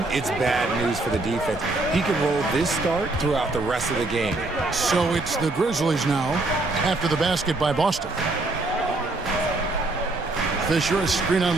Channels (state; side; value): quieter; left; 3.0 dB